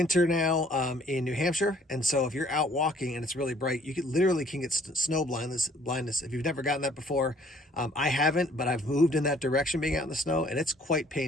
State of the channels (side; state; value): both; normal; correlation 0.59